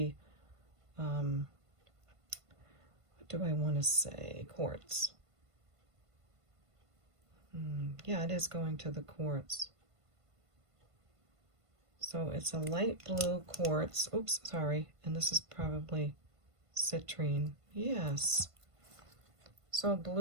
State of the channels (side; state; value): left; late; 1.5 ms